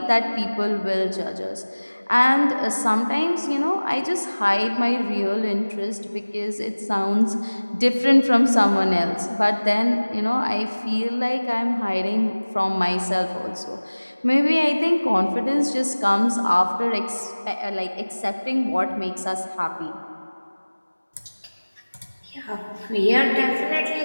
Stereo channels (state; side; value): inverted; both; correlation -1.00